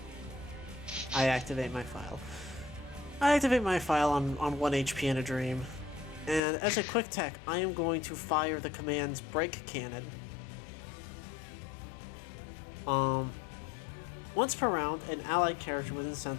I activate my file. I activate my file on 1 HP in a dream. And as a quick tech, I am going to fire the command's break cannon. Once per round, an allied character within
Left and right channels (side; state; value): right; drops out; at 6.4 s